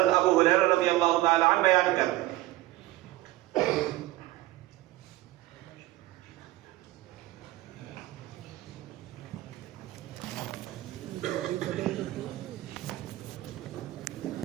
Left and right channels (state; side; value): quieter; left; 17.3 dB